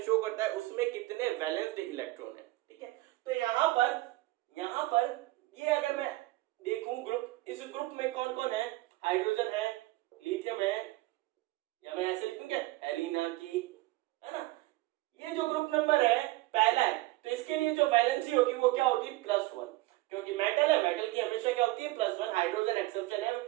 शो करता है उसमें कितने वैलेंस इलेक्ट्रॉन है, ठीक है। तो यहाँ पर ये अगर मैं देखूं ग्रुप, इस ग्रुप में कौन कौन है, हाइड्रोजन है, लिथियम है, या मैं ऐसे लिखूं क्या, एलिना की, है ना। ये जो ग्रुप नंबर है पहला है, तो इसके लिए जो वैलेंसी होगी वो क्या होगी, +1, क्योंकि मेटल है, मेटल की हमेशा क्या होती है, +1, हाइड्रोजन एक्सेप्शन है,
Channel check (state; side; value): quieter; left; 19.2 dB